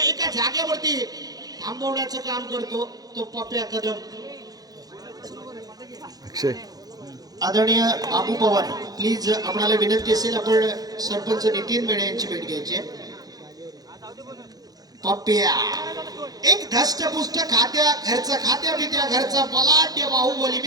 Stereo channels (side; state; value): left; late; 0.18 ms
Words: एका जागेवरती थांबवण्याचं काम करतो तो पप्प्या कदम. आदरणीय बाबू पवार, प्लीज आपल्याला विनंती असेल आपण सरपंच नितीन मेढे यांची भेट घ्यायची. पप्प्या एक धष्टपुष्ट खात्या बित्या घरचा बलाढ्य बाहुबली.